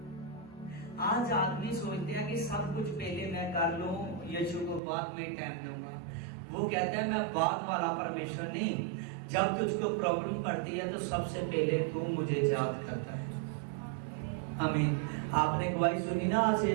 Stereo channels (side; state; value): left; drops out; at 4.8 s